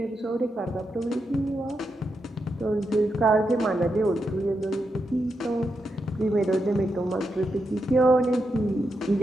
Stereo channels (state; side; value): normal; both; correlation 0.85